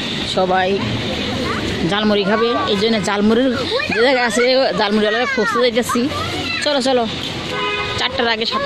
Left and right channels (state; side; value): identical; both; correlation 1.00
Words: সবাই ঝালমুড়ি খাবে, এই জন্য ঝালমুড়ির যে জায়গায় আছে ঝালমুড়িওয়ালা খুঁজতে যাইতেছি। চলো চলো, 4টার আগে 7